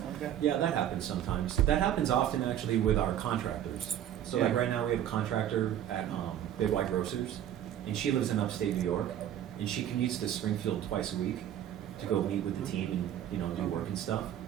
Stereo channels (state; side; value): quieter; left; 10.9 dB